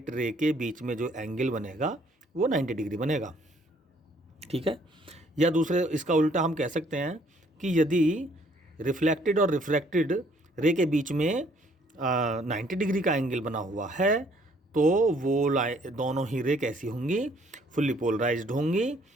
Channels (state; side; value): normal; both; correlation 0.63